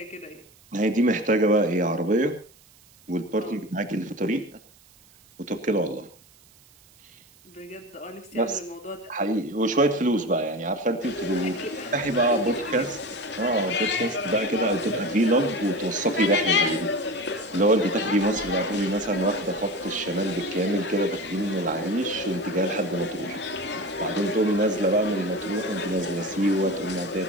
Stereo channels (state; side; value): noise; right; hiss, 28 dB below the sound